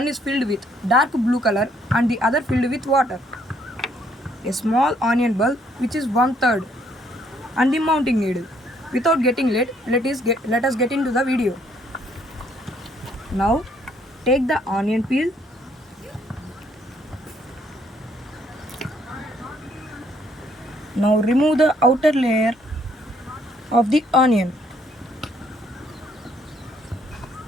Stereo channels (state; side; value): normal; both; correlation 0.67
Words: is filled with dark blue color and the other filled with water. A small onion bulb which is 1/3 and the mounting needle. Without getting late, let us get into the video. Now take the onion peel. Now remove the outer layer of the onion.